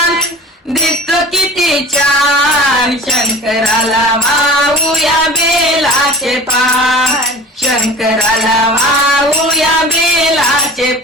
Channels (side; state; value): both; normal; correlation 0.41